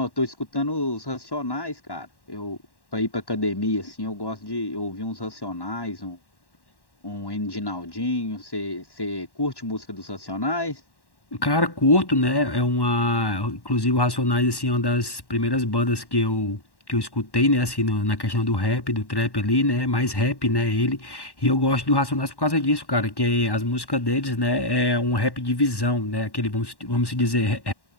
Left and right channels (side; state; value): right; late; 1.1 ms